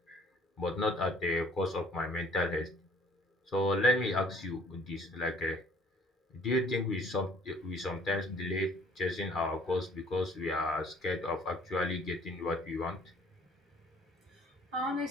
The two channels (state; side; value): normal; both; correlation 0.57